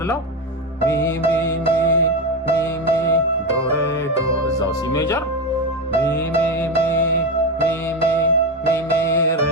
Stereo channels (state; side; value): normal; both; correlation 0.15